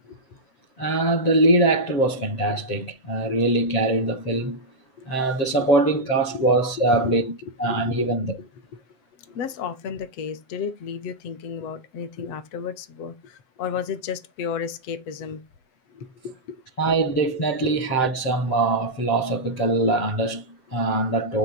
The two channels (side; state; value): right; late; 7.7 ms